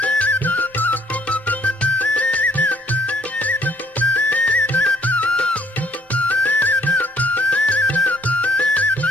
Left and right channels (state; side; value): normal; both; correlation 0.63